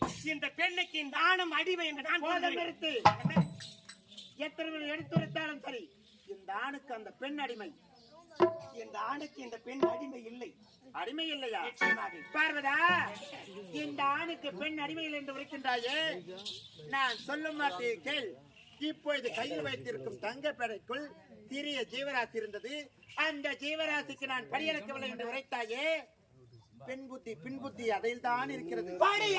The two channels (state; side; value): identical; both; correlation 1.00